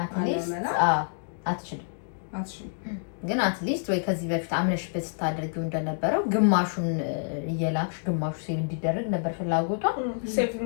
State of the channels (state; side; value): silent; right; digital silence